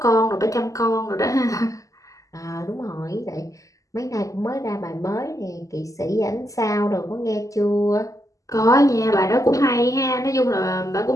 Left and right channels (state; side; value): late; right; 0.16 ms